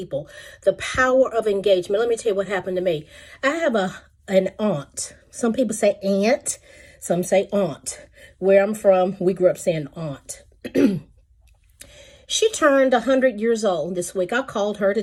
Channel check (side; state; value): both; identical; correlation 1.00